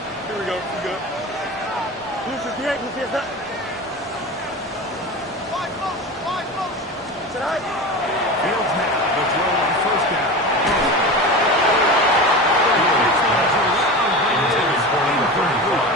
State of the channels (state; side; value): normal; both; correlation 0.28